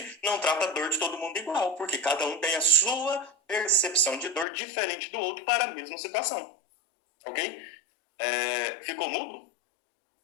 não trata a dor de todo mundo igual, porque cada um tem a sua percepção de dor diferente do outro para a mesma situação. Ok? Ficou mudo?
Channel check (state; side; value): drops out; right; at 4.5 s